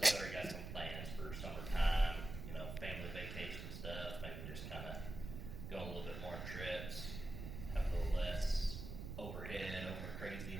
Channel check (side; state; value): right; noise; rumble, 7 dB below the sound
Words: already got some plans for summertime, family vacation stuff. Maybe just kind of go on a little bit more trips, have a little less overhead, over